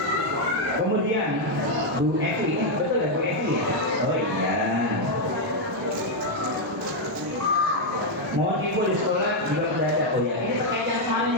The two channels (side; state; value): both; normal; correlation 0.00